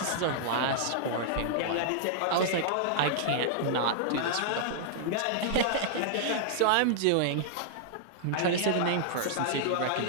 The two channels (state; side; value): different; both; correlation -0.01